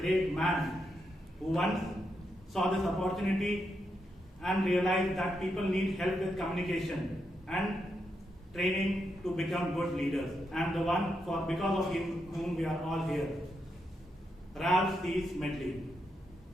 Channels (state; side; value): normal; both; correlation 0.83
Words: man who once saw this opportunity and realized that people need help with communication and training to become good leaders, and the one because of whom we are all here, Ralph C. Smedley.